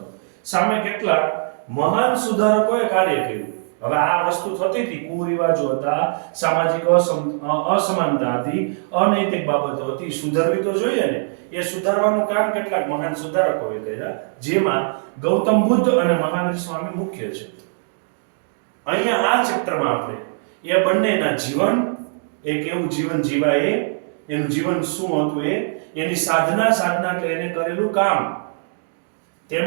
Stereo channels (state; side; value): silent; left; digital silence